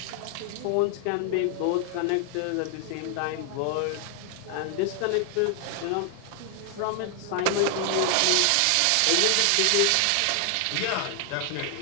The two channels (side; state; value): both; different; correlation 0.00